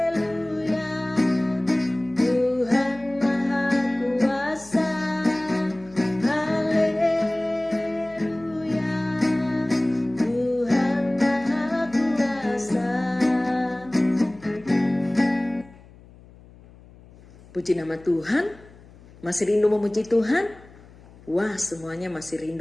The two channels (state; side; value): noise; left; hum, 23 dB below the sound